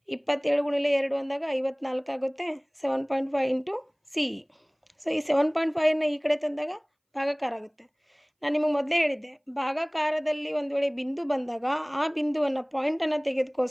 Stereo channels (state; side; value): identical; both; correlation 1.00